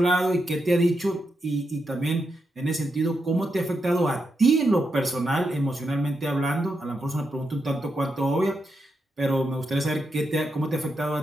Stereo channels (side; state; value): both; normal; correlation 0.85